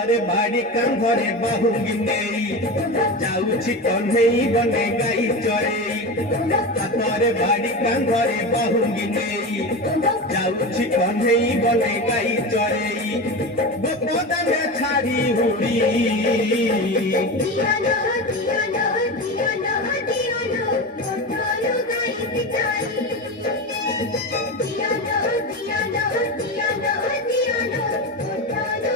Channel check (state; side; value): normal; both; correlation 0.23